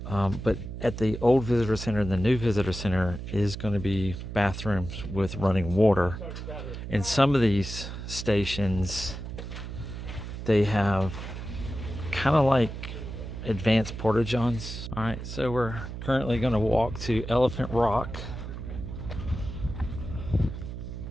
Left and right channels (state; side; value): noise; right; hum, 8 dB below the sound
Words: But at the old visitor center and the new visitor center is going to be bathrooms with running water. In some of these stations, they have kind of like advanced porta-johns. All right, so we're currently going to walk to Elephant Rock.